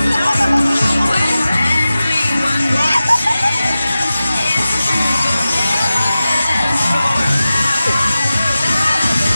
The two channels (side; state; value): both; inverted; correlation -0.94